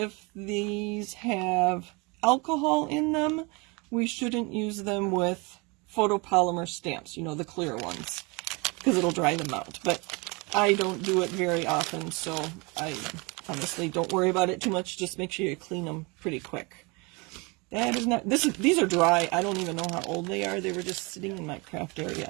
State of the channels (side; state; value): left; quieter; 28.2 dB